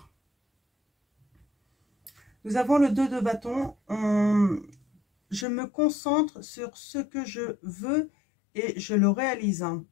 Nous avons le 2 de bâton. Je me concentre sur ce que je veux et je le réalise. Hein.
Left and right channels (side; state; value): right; drops out; at 5.5 s